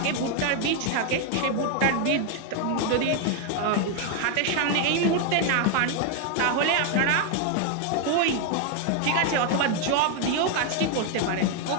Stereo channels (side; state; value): both; different; correlation 0.00